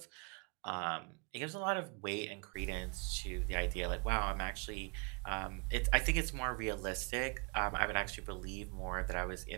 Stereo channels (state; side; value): quieter; left; 34.0 dB